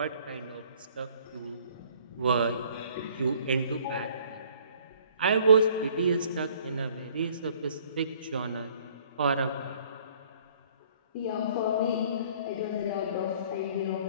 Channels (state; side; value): inverted; both; correlation -0.57